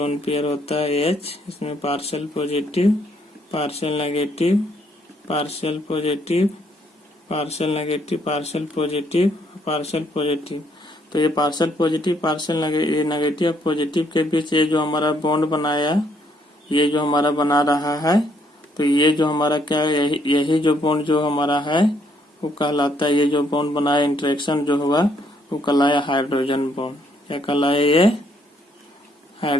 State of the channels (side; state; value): both; normal; correlation 0.70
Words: पेयर होता है H, इसमें partial positive, partial negative, partial positive, partial negative, partial positive, partial positive. तो ये partial positive, partial negative positive के बीच ये जो हमारा बॉन्ड बनाया, ये जो हमारा बना रहा है, तो ये जो हमारा क्या है, यही जो बॉन्ड जो हमारा है वो कहलाता है, ये जो बॉन्ड बनाया इंटरेक्शन जो हुआ वो कहलाया हाइड्रोजन बॉन्ड। क्या कहलाया, ये